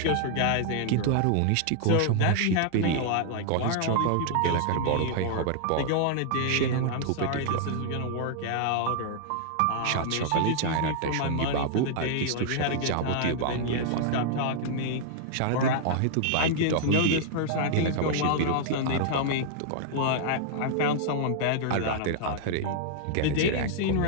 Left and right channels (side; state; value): both; different; correlation -0.01